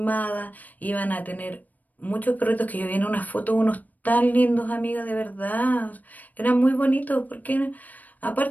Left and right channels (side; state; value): right; late; 0.080 ms